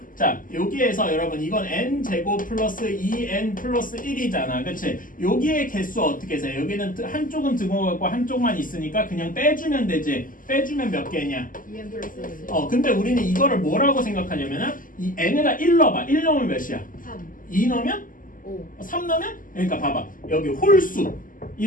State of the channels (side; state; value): right; late; 0.39 ms